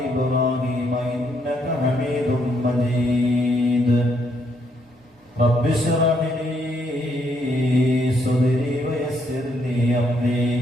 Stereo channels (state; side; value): normal; both; correlation 0.73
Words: إبراهيم إنك حميد مجيد. رب اشرح لي صدري ويسر لي أمري